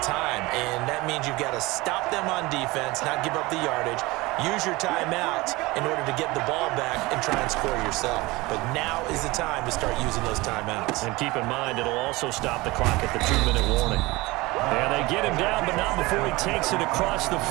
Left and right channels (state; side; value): quieter; left; 21.7 dB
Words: and that means you've got to stop them on defense, not give up the yardage, use your timeouts in order to get the ball back and try and score yourself. But now is the time to start using those timeouts. And keep in mind, it'll also stop the clock at the 2-minute warning. And they get him down, but not before he takes it across the